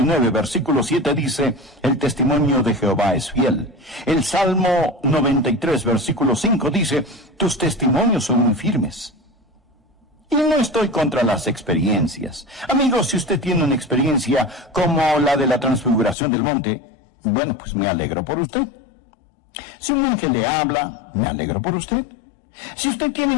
versículo 7 dice, el testimonio de Jehová es fiel. El Salmo 93, versículo 5 dice, tus testimonios son muy firmes. Y no estoy contra las experiencias. Amigos, si usted tiene una experiencia como la de la transfiguración del monte, bueno, pues me alegro por usted. Si un ángel le habla, me alegro por usted. Si usted tiene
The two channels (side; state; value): right; drops out; at 16.2 s